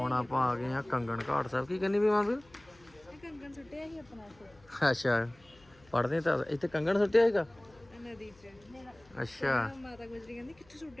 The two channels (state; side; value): noise; left; hum, 28 dB below the sound